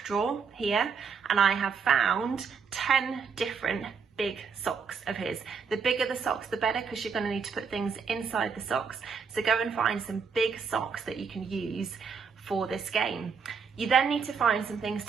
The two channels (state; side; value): quieter; left; 5.9 dB